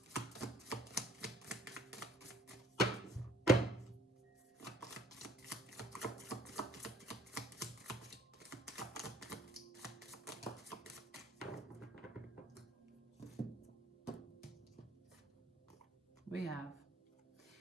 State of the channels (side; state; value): both; normal; correlation 0.59